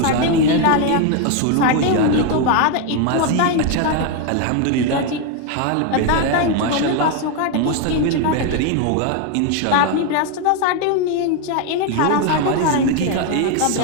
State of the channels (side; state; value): both; different; correlation 0.01